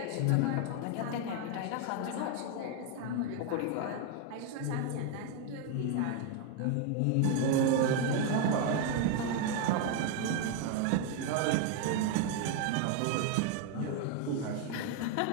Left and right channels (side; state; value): both; different; correlation 0.01